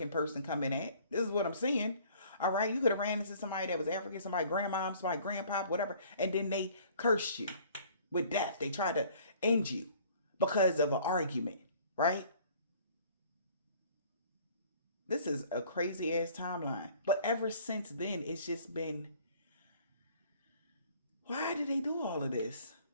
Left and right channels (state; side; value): inverted; both; correlation -0.54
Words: person come in at. This is what I'm seeing. All right, you could have ran into somebody that was African, somebody grandmom, somebody grandpop, whatever, and then they cursed you with death. They tried to end you because of an argument, right? This is a crazy ass timeline. But ever since then, it's just been, why did they do all of this?